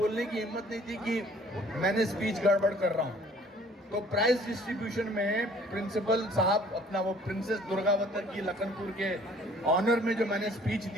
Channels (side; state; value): both; normal; correlation 0.55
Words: की हिम्मत नहीं थी कि मैंने स्पीच गड़बड़ कर रहा हूँ। तो प्राइज डिस्ट्रीब्यूशन में प्रिंसिपल साहब अपना वो प्रिंसेस दुर्गावती की लखनपुर के ऑनर में जो मैंने स्पीच